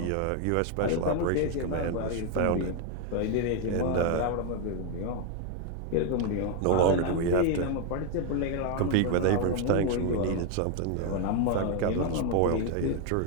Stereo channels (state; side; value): different; both; correlation 0.01